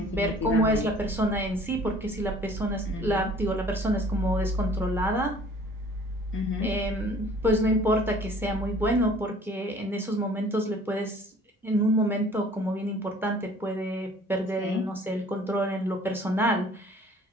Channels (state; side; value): normal; both; correlation 0.52